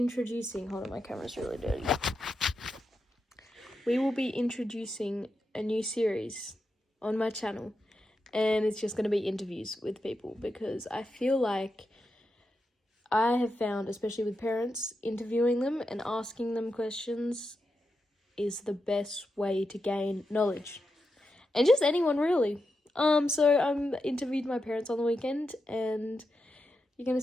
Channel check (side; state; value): both; normal; correlation 0.87